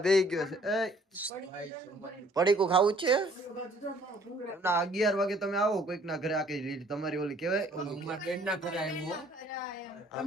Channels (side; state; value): both; normal; correlation 0.59